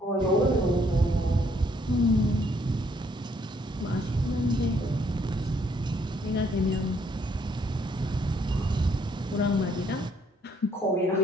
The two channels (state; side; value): normal; both; correlation 0.68